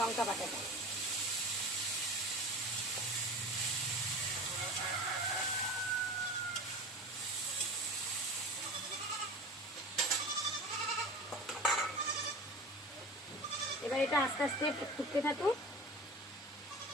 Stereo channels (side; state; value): both; normal; correlation 0.35